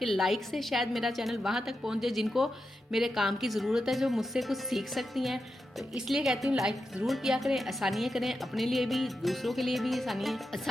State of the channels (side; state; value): both; normal; correlation 0.88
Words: लाइक से शायद मेरा चैनल वहाँ तक पहुँचे जिनको मेरे काम की ज़रूरत है, जो मुझसे कुछ सीख सकती हैं। तो इसलिए कहती हूँ लाइक ज़रूर किया करें, आसानियाँ करें, अपने लिए भी दूसरों के लिए भी